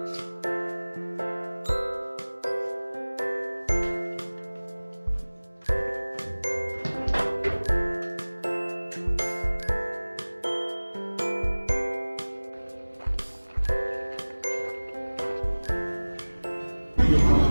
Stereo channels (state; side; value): inverted; both; correlation -1.00